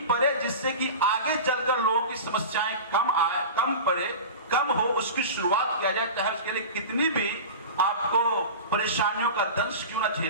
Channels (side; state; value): both; inverted; correlation -0.30